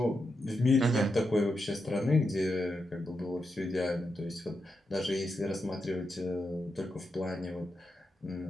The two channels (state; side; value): normal; both; correlation 0.86